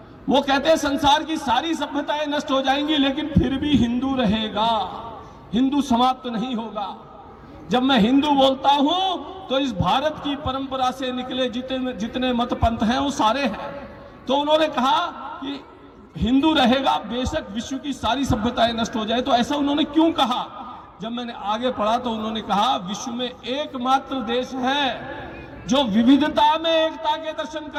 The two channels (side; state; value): both; identical; correlation 1.00